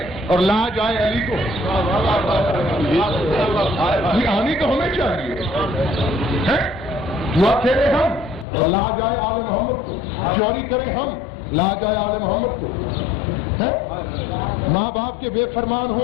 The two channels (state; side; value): drops out; right; at 8.5 s